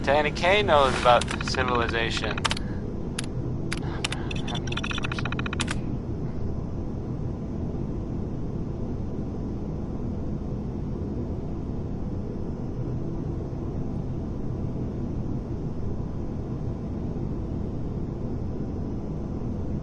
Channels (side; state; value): both; identical; correlation 1.00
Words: Danny Kaye knows about civilization.